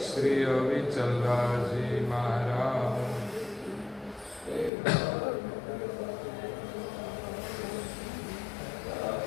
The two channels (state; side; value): drops out; right; at 4.7 s